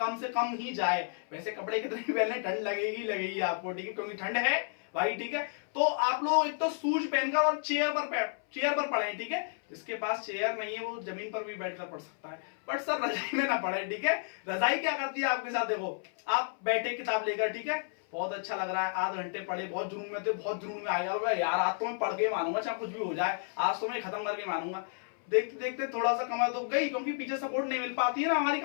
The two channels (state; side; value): silent; right; 57 dB below the other